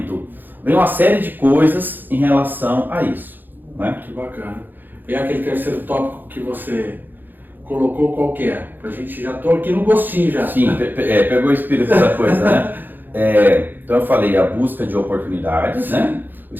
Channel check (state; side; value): late; left; 0.089 ms